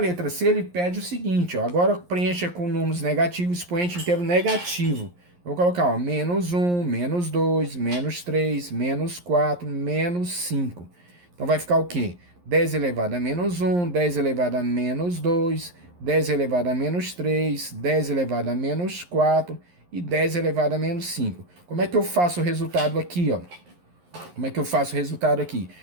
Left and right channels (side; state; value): left; late; 11 ms